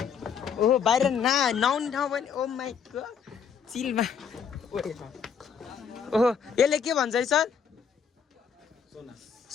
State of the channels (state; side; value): quieter; right; 7.0 dB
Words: ओहो बाहिर नआउने ठाउँ पनि ओ माई गॉड चिलमा ओहो यसले के भन्छ है सर